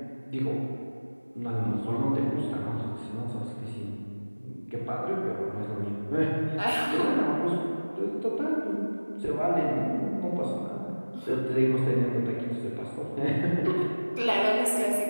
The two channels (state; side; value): inverted; both; correlation -1.00